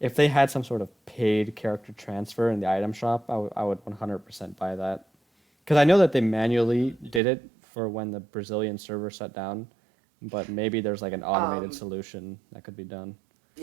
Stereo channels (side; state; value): left; drops out; at 7.2 s